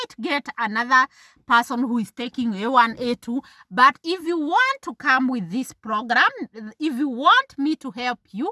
get another person who is taking A1, A2, but if you want to come with this program, if you want me to help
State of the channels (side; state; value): both; identical; correlation 1.00